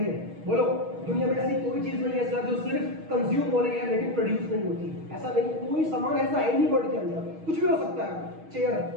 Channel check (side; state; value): left; late; 6.3 ms